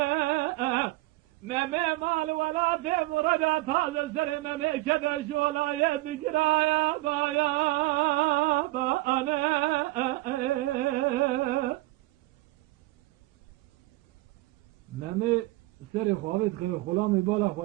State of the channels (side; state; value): left; quieter; 20.2 dB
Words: meme mal vela demurada taze seri meme keder şolaya dikiraya baya ba ane meme seri xavit khir khulami bala